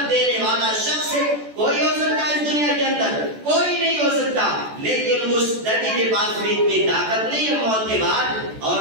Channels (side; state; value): left; late; 14 ms